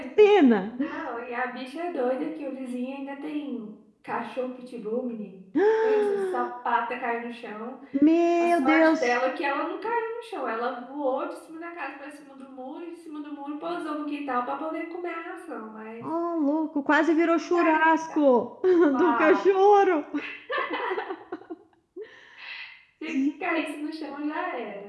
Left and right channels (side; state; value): both; identical; correlation 1.00